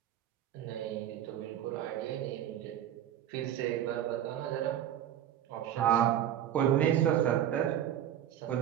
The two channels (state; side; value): quieter; left; 10.8 dB